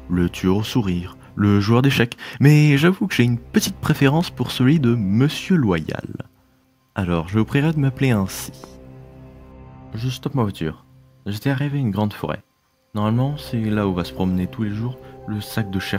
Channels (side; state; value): both; identical; correlation 1.00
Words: Le tueur au sourire, le joueur d'échecs, mais j'avoue que j'ai une petite préférence pour celui de Monsieur Loyal. Alors, je vous prierai de m'appeler ainsi. Je stoppe ma voiture. J'étais arrivé à une grande forêt. Normalement, c'est là où va se promener tous les jours le sac de